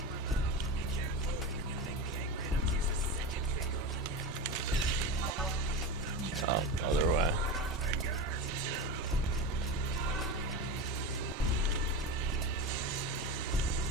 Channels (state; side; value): normal; both; correlation 0.23